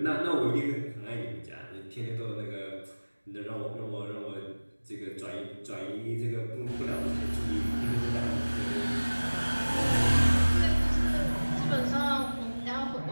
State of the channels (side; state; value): both; inverted; correlation -1.00